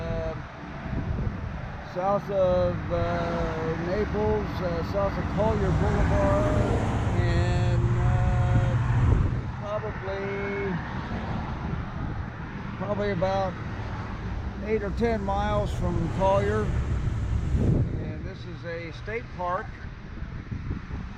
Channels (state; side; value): identical; both; correlation 1.00